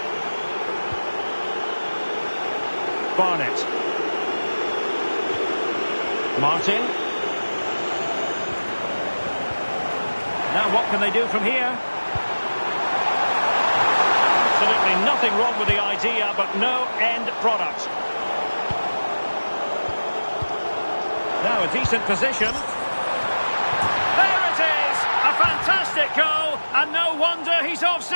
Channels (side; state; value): both; inverted; correlation -1.00